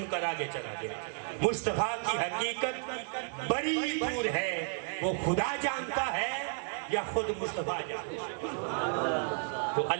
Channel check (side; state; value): left; silent; 56 dB below the other